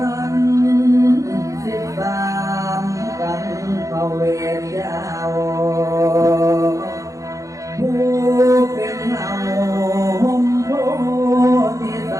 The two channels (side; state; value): left; late; 0.16 ms